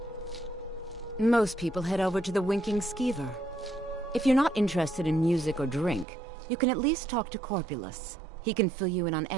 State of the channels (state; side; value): drops out; left; at 6.1 s